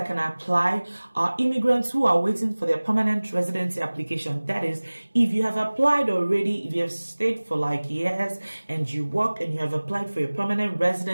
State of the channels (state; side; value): inverted; both; correlation -1.00